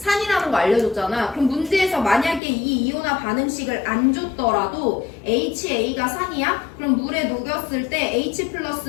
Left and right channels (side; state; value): right; drops out; at 2.4 s